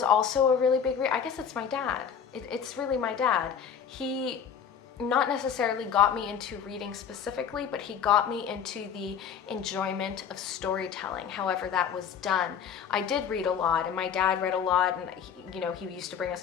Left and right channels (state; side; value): quieter; right; 7.7 dB